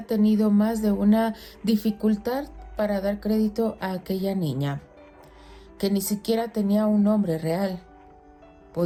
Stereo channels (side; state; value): both; identical; correlation 1.00